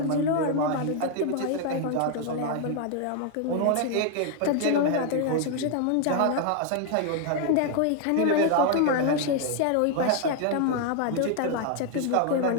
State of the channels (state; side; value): different; both; correlation 0.00